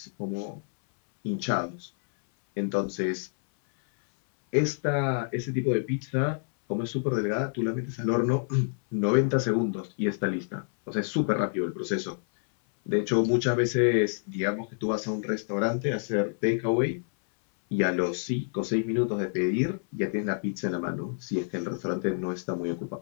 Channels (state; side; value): silent; right; 59 dB below the other